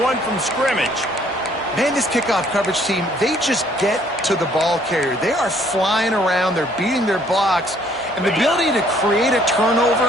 one from scrimmage. Man, this kickoff coverage team, they just get to the ball carrier. They are flying around. They're beating their blocks. And the ability to create a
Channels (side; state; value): both; normal; correlation 0.62